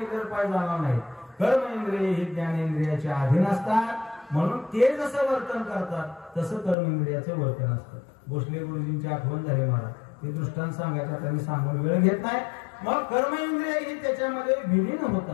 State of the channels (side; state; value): right; drops out; at 6.8 s